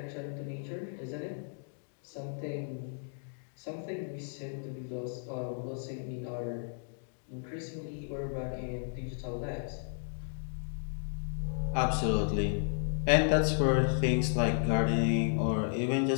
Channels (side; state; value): right; silent; digital silence